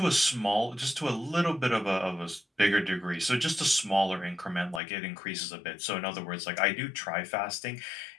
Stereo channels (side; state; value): right; drops out; at 4.8 s